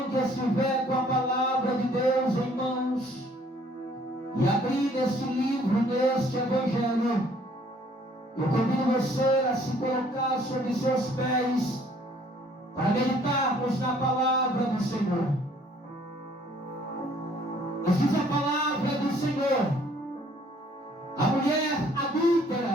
que estiver com a palavra de Deus em mãos e abrir este livro, neste Evangelho, eu convido você a se colocar sobre seus pés para meditarmos na palavra do Senhor. Nos diz a palavra do Senhor: a mulher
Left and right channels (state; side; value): normal; both; correlation 0.60